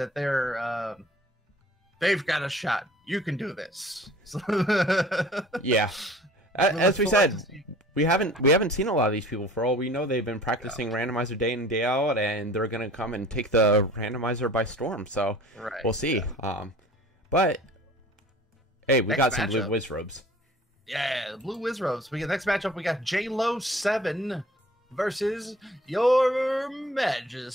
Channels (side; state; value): both; normal; correlation 0.47